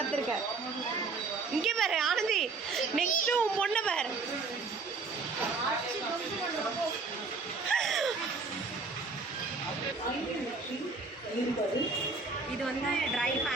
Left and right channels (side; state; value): left; quieter; 4.1 dB